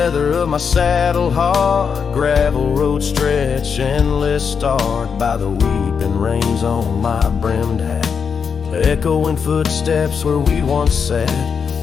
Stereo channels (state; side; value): quieter; right; 6.3 dB